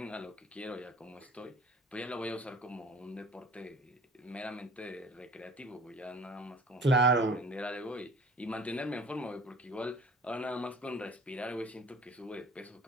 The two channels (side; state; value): both; normal; correlation 0.48